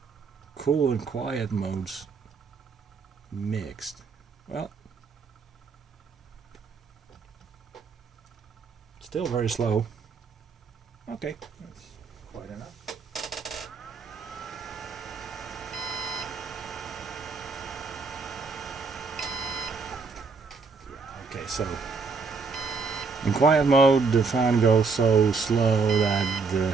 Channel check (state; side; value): quieter; left; 4.8 dB